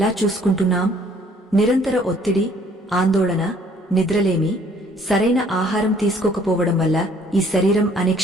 చూసుకుంటున్నాం? నిరంతర ఒత్తిడి, ఆందోళన, నిద్రలేమి, సరైన ఆహారం తీసుకోకపోవడం వల్ల ఈ శరీరం అనే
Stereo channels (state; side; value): normal; both; correlation 0.60